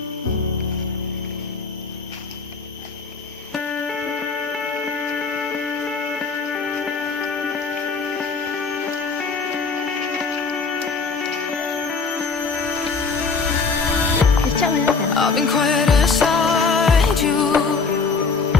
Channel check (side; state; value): right; quieter; 4.7 dB